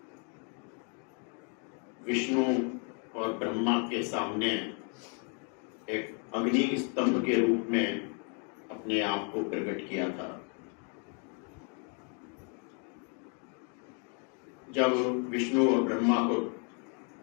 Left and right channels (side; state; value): right; quieter; 39.2 dB